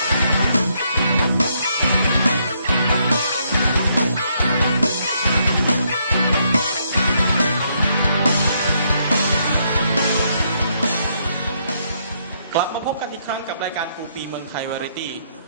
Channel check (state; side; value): inverted; both; correlation -0.74